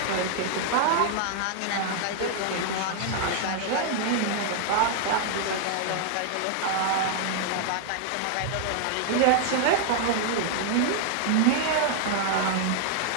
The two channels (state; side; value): different; both; correlation 0.00